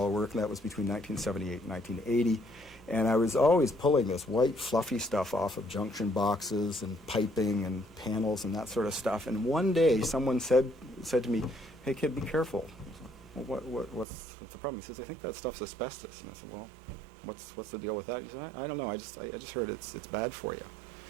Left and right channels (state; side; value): drops out; left; at 14.1 s